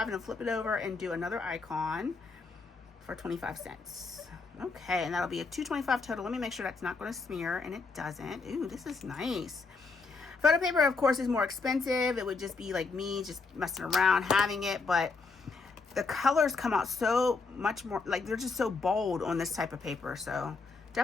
and I'll flip it over and do another icon for 25 cents. Okay, and that'll be a $2.25 total. Let me make sure that's not going to smear, and it doesn't. Ooh, this is nice. Photo paper, of course, is more expensive. It would just be like me just messing around having it, but the colors come out so much more, like they're just so bold on this type of paper. So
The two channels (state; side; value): quieter; right; 4.3 dB